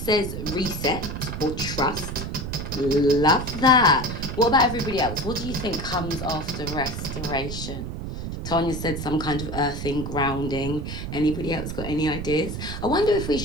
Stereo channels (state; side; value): noise; right; rumble, 5 dB below the sound